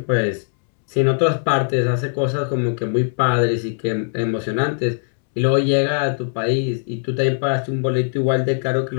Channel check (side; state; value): right; silent; 66 dB below the other